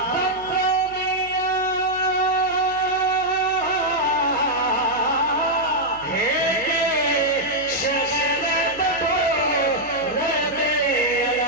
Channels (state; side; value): noise; right; hum, 21 dB below the sound